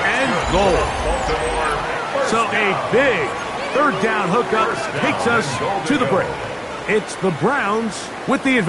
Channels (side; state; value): both; identical; correlation 1.00